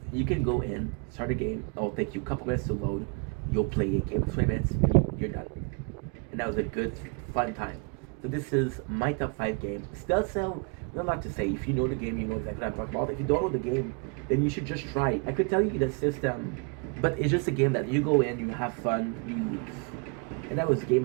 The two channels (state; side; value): quieter; left; 35.7 dB